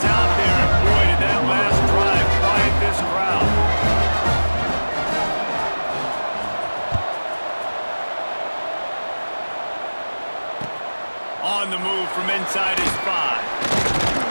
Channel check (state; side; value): inverted; both; correlation -1.00